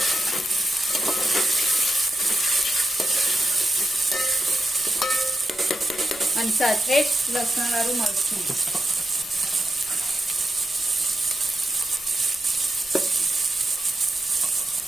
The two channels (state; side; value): noise; right; rumble, 25 dB below the sound